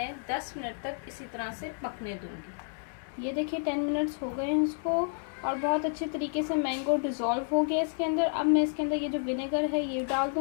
10 मिनट तक इसी तरह से पकने दूंगी। ये देखिए 10 मिनट्स हो गए हैं इसको और बहुत अच्छे तरीके से मैंगो डिज़ोल्व हो गया इसके अंदर। अब मैं इसके अंदर ये जो विनेगर है ये डाल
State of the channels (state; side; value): silent; right; digital silence